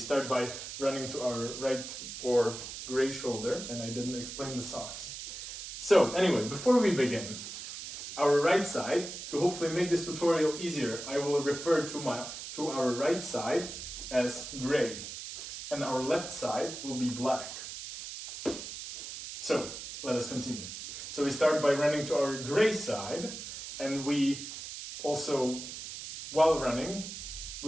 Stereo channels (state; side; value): noise; right; hiss, 9 dB below the sound